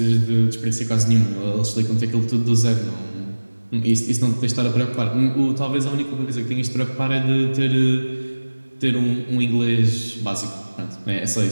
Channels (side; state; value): both; inverted; correlation -1.00